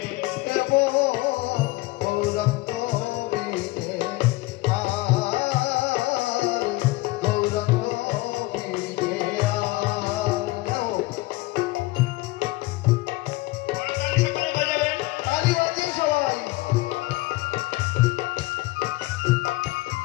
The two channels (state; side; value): quieter; right; 20.2 dB